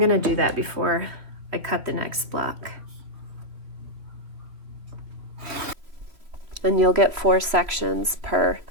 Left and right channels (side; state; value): left; late; 3.0 ms